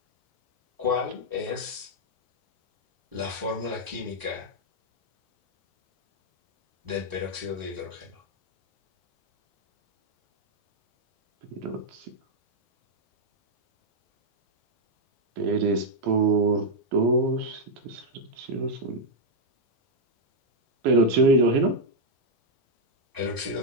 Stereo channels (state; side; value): normal; both; correlation -0.01